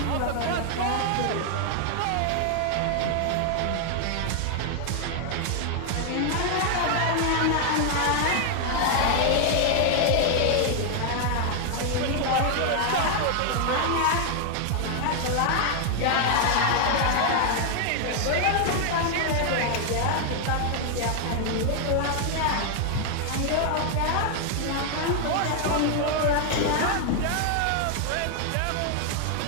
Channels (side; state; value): both; different; correlation 0.00